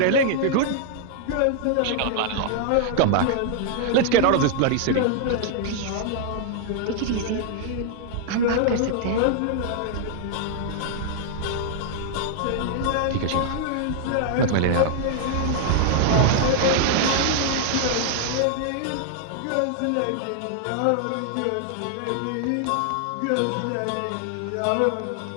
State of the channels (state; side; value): different; both; correlation -0.01